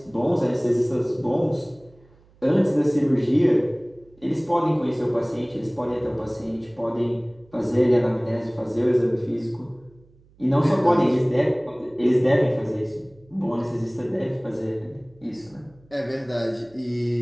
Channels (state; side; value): noise; right; hum, 29 dB below the sound